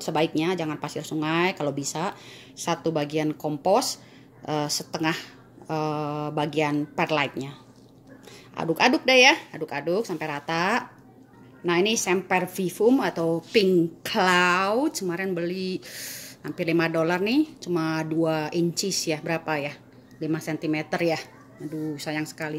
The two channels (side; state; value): both; identical; correlation 1.00